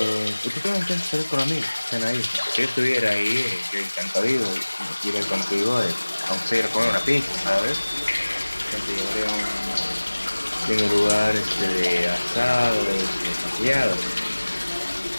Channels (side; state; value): both; inverted; correlation -1.00